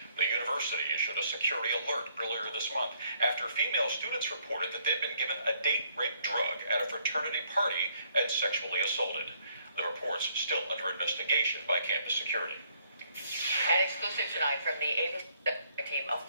The university issued a security alert earlier this month after female students reported that they'd been given a date rape drug at a fraternity party and sexually assaulted. The report's still under investigation by campus security. An exclusive tonight from the ABC team, a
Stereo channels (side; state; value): both; inverted; correlation -0.68